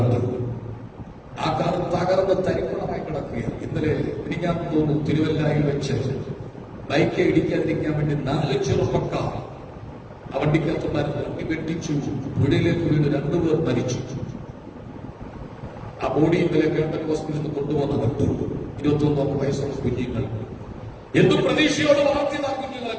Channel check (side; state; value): both; identical; correlation 1.00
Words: ആ കാർ തകർന്ന് തരിപ്പണമായി കിടക്കുകയാണ്. ഇന്നലെ ഞാൻ തോന്നുന്നു തിരുവല്ലയിൽ വെച്ച് ബൈക്ക് ഇടിക്കാതിരിക്കാൻ വേണ്ടി 4 ചെറുപ്പക്കാർ ആ വണ്ടിക്കകത്തുണ്ടായിരുന്നു. വണ്ടി വെട്ടിച്ചു, പുഴയിലേക്ക് വീണ് 2 പേർ മരിച്ചു. ആ ബോഡി ഇന്നലെ ഗവൺമെന്റ് ഹോസ്പിറ്റലിൽ കൊണ്ടുവന്ന് കണ്ടു. 21 വയസ്സുള്ള കുഞ്ഞുങ്ങൾ. എന്തും പ്രതീക്ഷയോട് വളർത്തിയതാ കുഞ്ഞുങ്ങളെ,